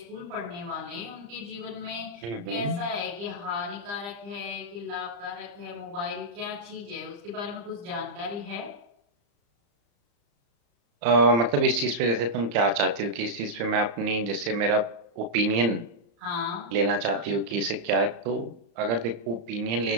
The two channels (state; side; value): late; left; 35 ms